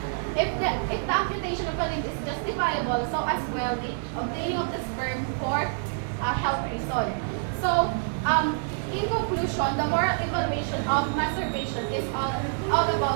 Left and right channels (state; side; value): silent; left; digital silence